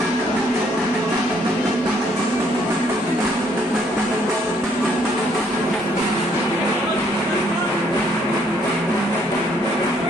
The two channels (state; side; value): normal; both; correlation 0.67